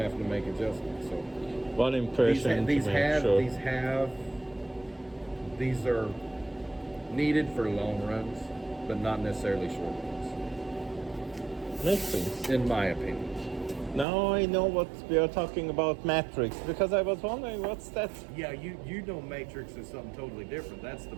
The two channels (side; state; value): left; drops out; at 14.1 s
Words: to make adjustments. So One impression these are needed for long runs, but not necessarily short runs. Makes sense. In my opinion. Now I know what we are talking about matrix, because I was wondering what's that. Yeah, you know matrix is something totally different. That's the